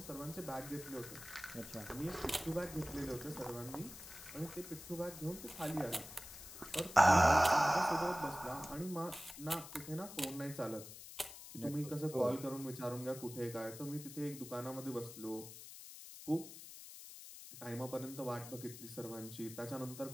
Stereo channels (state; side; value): noise; left; hiss, 13 dB below the sound